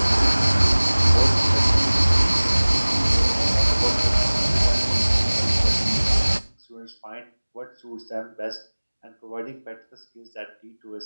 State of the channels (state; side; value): inverted; both; correlation -1.00